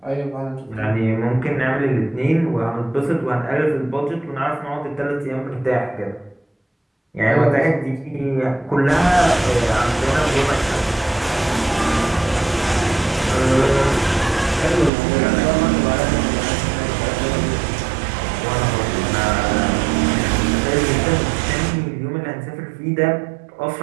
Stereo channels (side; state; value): left; drops out; at 14.9 s